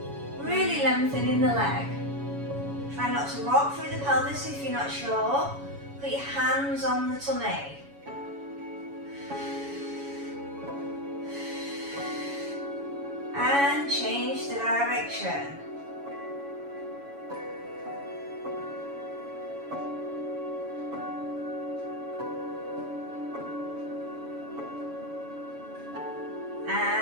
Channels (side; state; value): left; late; 7.1 ms